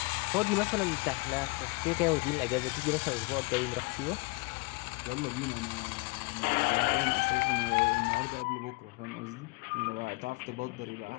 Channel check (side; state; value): right; quieter; 28.0 dB